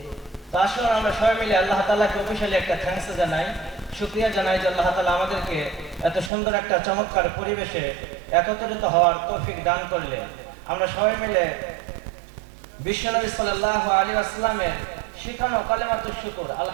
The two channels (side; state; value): left; drops out; at 6.3 s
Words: আসুন আমরা সবাই মিলে আল্লাহ তাআলাকে অফিশিয়ালি একটা থ্যাঙ্কস জানাই, শুকরিয়া জানাই যে আল্লাহ তাআলা আমাদেরকে এত সুন্দর একটা চমৎকার পরিবেশে একত্রিত হওয়ার তৌফিক দান করলেন। আমরা সবাই মিলে বিশ্বনবী সাল্লাল্লাহু আলাইহি ওয়াসাল্লামের শিখানো কালেমাতুশ শুকর